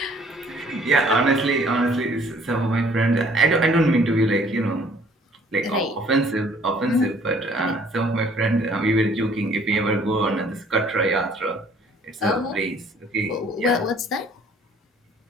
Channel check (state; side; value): normal; both; correlation 0.58